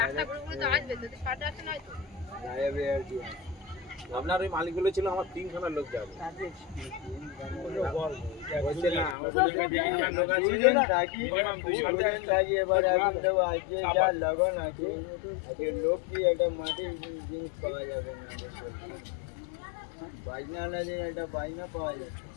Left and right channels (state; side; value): drops out; right; at 9.2 s